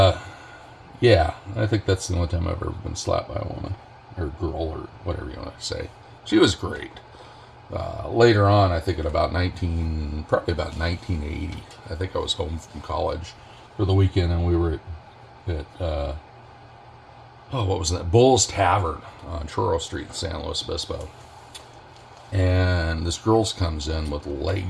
I think that's the only time I've ever been slapped by a woman, or girl, or whatever you want to say. She was great. Later on, I think probably about 1980, I think I was home from college for the weekend, and we were at what was that? Bull's Tavern on Churro Street in San Luis Obispo. And this girl comes in with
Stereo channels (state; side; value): identical; both; correlation 1.00